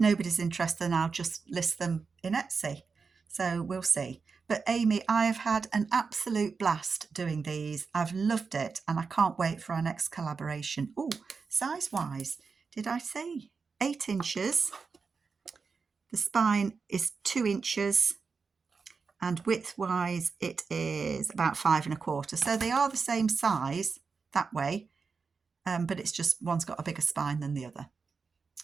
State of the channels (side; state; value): left; quieter; 5.0 dB